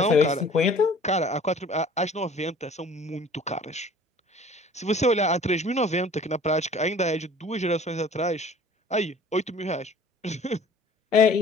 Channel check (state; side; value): normal; both; correlation 0.49